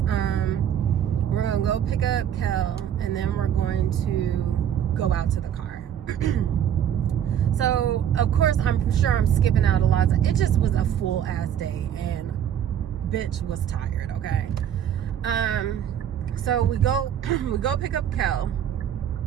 We're going to go pick up Kel, and then we're going to go out to the car. So, of course, I'm sure I'm skipping out a lot. It just was a full ass day, and bitch was tired, okay? So we go pick up Kel.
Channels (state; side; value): quieter; left; 9.6 dB